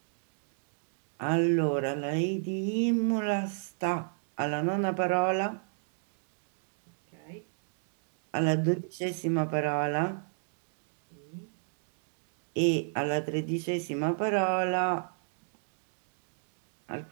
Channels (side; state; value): left; silent; digital silence